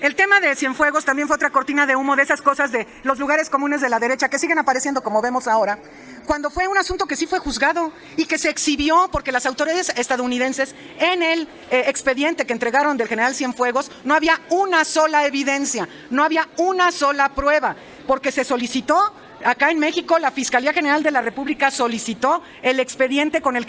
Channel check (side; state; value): both; identical; correlation 1.00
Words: el tema de Cienfuegos también fue otra cortina de humo de esas cosas de los lugares comunes de la derecha que siguen apareciendo como vemos ahora, cuando fue un asunto que sí fue juzgado y que se exhibió porque las autoridades estadounidenses en el expediente que entregaron del general Cienfuegos no había una sola evidencia, no había una sola prueba, porque se solicitó. Acá en México, la Fiscalía General de la República solicitó el expediente con el